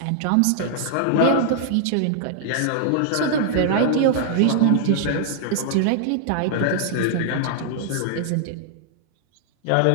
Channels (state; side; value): different; both; correlation -0.01